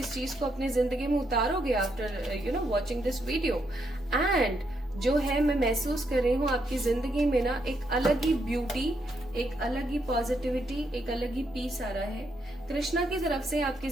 चीज को अपनी जिंदगी में उतारोगे after watching this video. And जो है, मैं महसूस कर रही हूँ आपकी जिंदगी में ना एक अलग ही ब्यूटी, एक अलग ही पॉजिटिविटी, एक अलग ही पीस आ रहा है। कृष्णा की तरफ से आपकी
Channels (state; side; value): normal; both; correlation 0.77